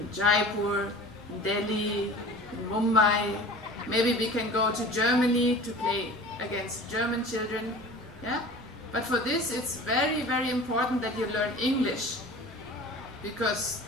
Jaipur, in Delhi, in Mumbai. Maybe we can go to Germany to play against German children. Yeah? But for this it's very, very important that you learn English. Because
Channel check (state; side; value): noise; right; rumble, 21 dB below the sound